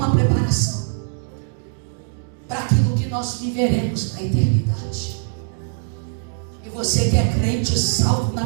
preparação para aquilo que nós viveremos na eternidade. E você que é crente, salvo na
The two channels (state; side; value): silent; left; digital silence